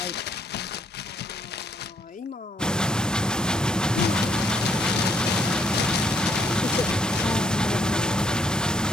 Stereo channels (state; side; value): normal; both; correlation 0.69